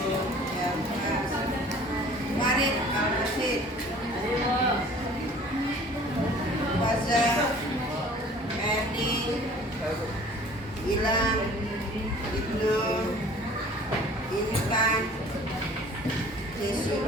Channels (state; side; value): normal; both; correlation 0.49